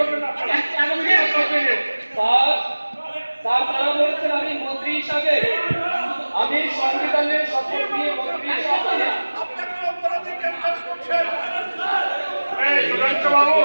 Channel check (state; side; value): inverted; both; correlation -1.00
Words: না? কন্টিনিউ। স্যার তারা বলছেন আমি মন্ত্রী হিসাবে আমি সংবিধানের শপথ নিয়ে মন্ত্রী হিসাবে